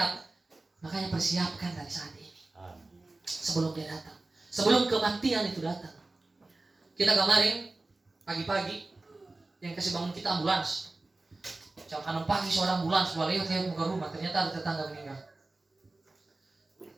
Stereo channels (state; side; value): quieter; left; 3.1 dB